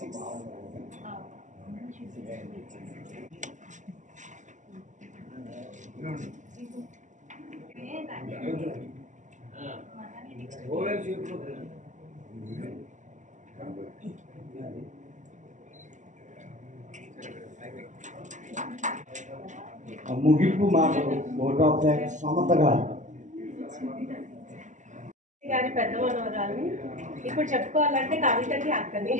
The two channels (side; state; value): left; late; 0.36 ms